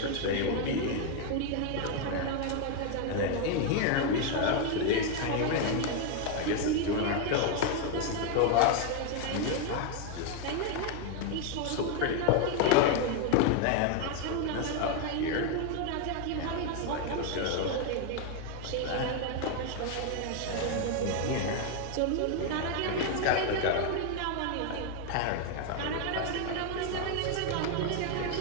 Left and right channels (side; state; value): both; different; correlation 0.01